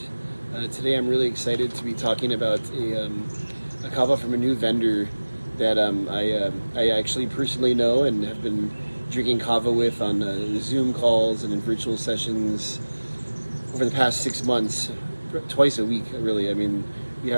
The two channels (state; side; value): inverted; both; correlation -1.00